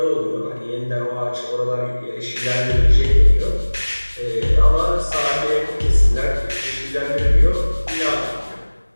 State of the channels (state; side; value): inverted; both; correlation -1.00